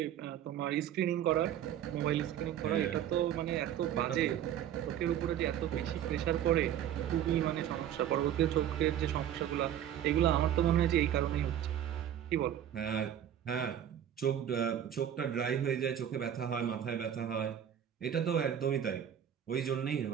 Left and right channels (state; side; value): quieter; left; 10.2 dB